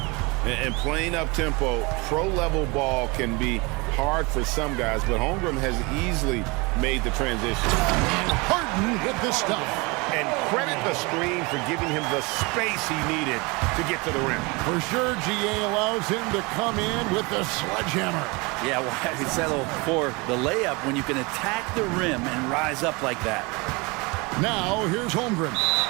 And playing up-tempo, pro-level ball can be hard for some guys, but Holmgren has easily made the transition. And Harden with the stuff. And credit the screen for giving him the space he needed to get to the rim. For sure, GA allows him to come in with the sledgehammer. Yeah, why settle for the layup when you can attack the rim and rise up like that? Now, here's Holmgren.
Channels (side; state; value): left; quieter; 26.7 dB